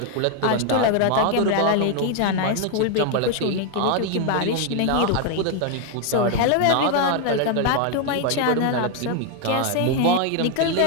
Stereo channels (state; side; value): different; both; correlation 0.01